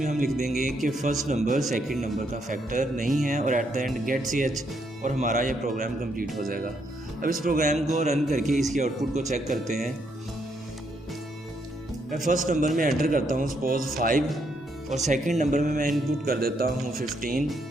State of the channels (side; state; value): both; normal; correlation 0.75